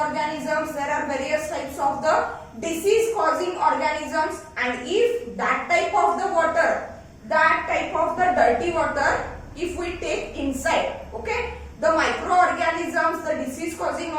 there are various types of the disease causing organisms, and if that type of the water, that type of the dirty water, if we take inside, okay, the microorganisms, the disease causing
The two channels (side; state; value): both; identical; correlation 1.00